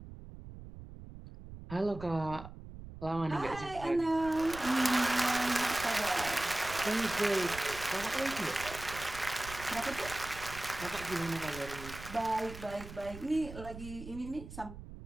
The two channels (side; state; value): right; noise; rumble, 13 dB below the sound